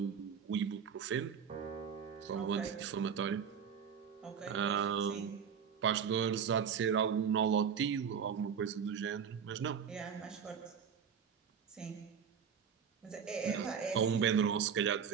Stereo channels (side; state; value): left; quieter; 7.2 dB